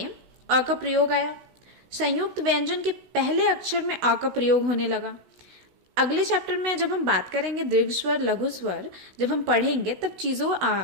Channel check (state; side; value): late; left; 16 ms